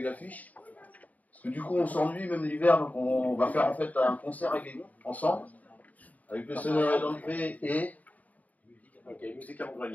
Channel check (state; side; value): late; right; 0.074 ms